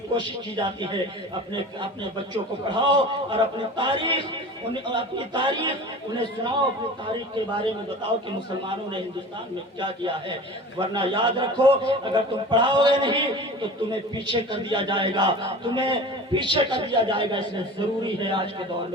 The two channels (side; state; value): both; normal; correlation 0.37